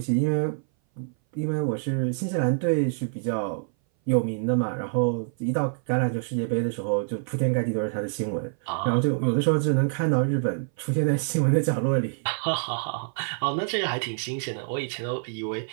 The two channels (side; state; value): left; silent; 58 dB below the other